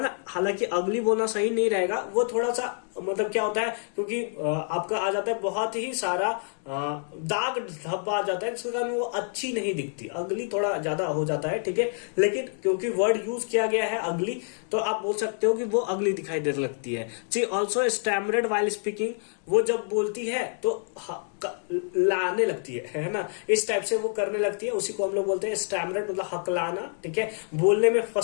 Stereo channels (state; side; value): silent; right; 60 dB below the other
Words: ना। हालांकि अगली बोलना सही नहीं रहेगा, वो थोड़ा सा मतलब क्या होता है, क्योंकि आपका आ जाता है बहुत ही सारा दाग धब्बा आ जाता है, जिसके कारण वो अच्छी नहीं दिखती। अगली थोड़ा ज्यादा हो जाता है, ठीक है। लेकिन क्योंकि वर्ड यूज किया गया है अगली, तो आप बोल सकते हो कि वो अगली दिखाई देने लगती है। शी ऑल्सो स्टैमरेड वाइल स्पीकिंग, वो जब बोलती है तो लाने लगती है ना, इस टाइप से वो करने लगती है। उसी को हम लोग बोलते हैं स्टैमरेड, मतलब हकलाना, ठीक है, बोलने में